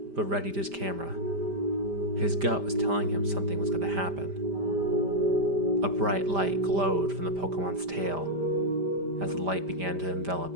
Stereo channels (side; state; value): left; late; 5.0 ms